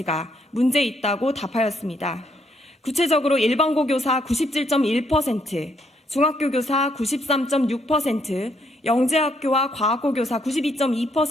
문제 있다고 답하였습니다. 구체적으로 일반고 교사 97.1%, 중학교 교사 93.6%, 영재학교와 과학고 교사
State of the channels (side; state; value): both; normal; correlation 0.73